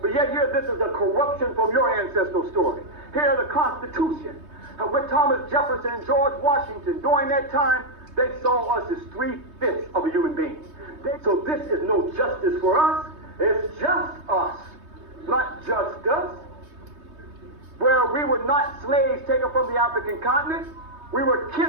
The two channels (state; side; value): late; left; 3.2 ms